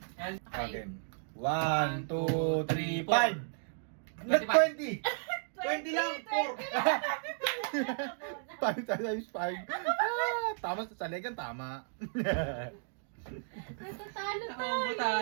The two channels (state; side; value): silent; left; digital silence